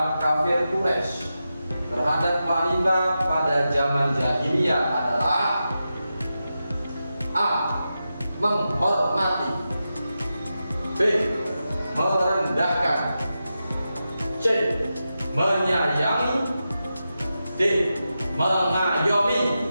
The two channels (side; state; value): both; inverted; correlation -0.90